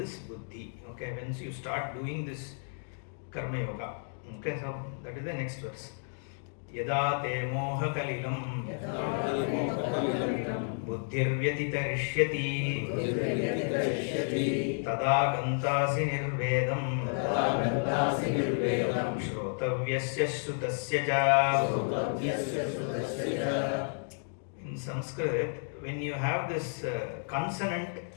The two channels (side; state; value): right; silent; 57 dB below the other